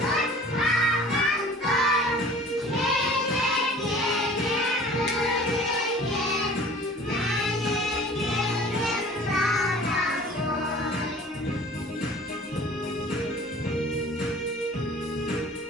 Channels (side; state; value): both; normal; correlation 0.46